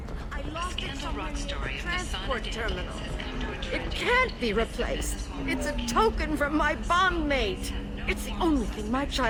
I lost it somewhere near the transport terminal. It can't be replaced. It's a token from my bondmate. It's the only thing my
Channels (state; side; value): identical; both; correlation 1.00